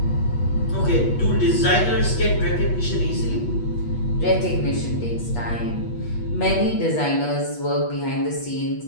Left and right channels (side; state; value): right; late; 8.3 ms